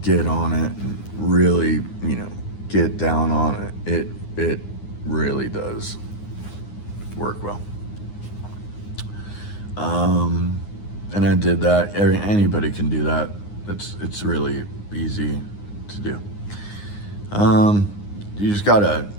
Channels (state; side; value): late; right; 9.7 ms